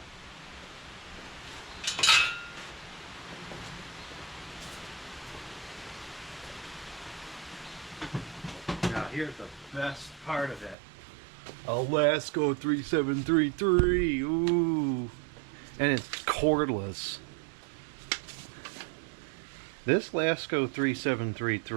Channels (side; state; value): left; drops out; at 10.8 s